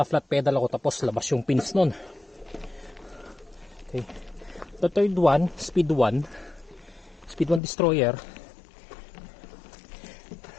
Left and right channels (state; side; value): drops out; right; at 7.6 s